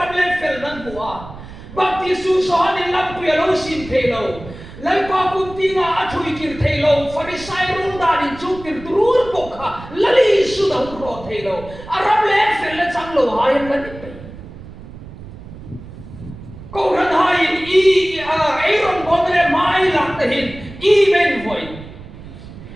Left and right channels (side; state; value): right; noise; rumble, 15 dB below the sound